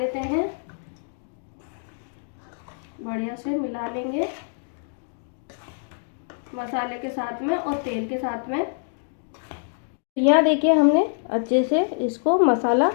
हैं, बढ़िया से मिला लेंगे मसाले के साथ में और तेल के साथ में। यहाँ देखिए हमने अच्छे से इसको मसाला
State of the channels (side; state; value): right; silent; digital silence